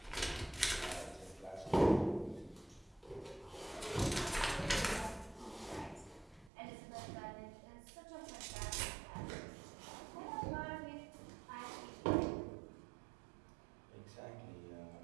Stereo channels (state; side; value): drops out; left; at 6.5 s